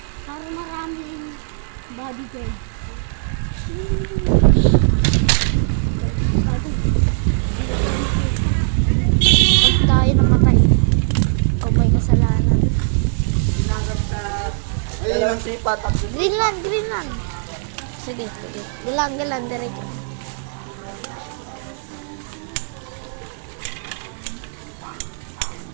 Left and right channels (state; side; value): silent; left; digital silence